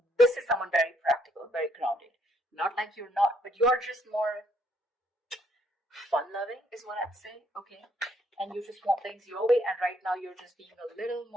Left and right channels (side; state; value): both; normal; correlation 0.69